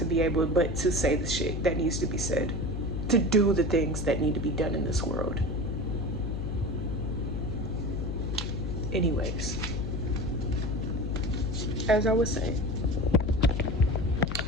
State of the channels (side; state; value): left; noise; hum, 3 dB below the sound